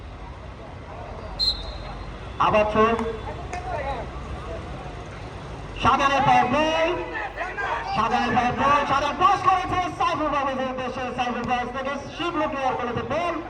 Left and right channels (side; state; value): both; identical; correlation 1.00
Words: আবার থ্রো, শাহজাহানের পায়ে বল, শাহজাহান পাস করেছে সাইফুল পারভেজের উদ্দেশ্যে, সাইফুল পারভেজ থেকে শিবলু ক্লিয়ার করেছে বল,